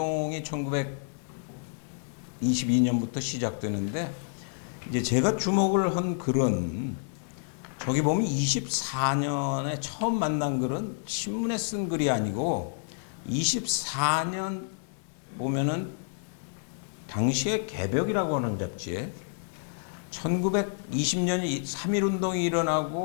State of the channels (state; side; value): silent; right; digital silence